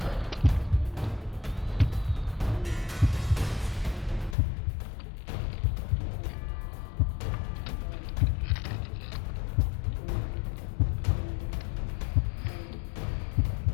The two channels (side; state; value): right; drops out; at 4.4 s